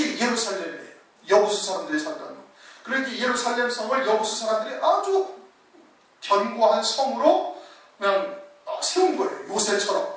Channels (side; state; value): both; identical; correlation 1.00